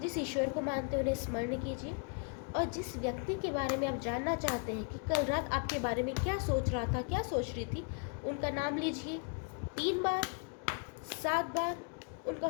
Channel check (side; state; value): right; quieter; 38.2 dB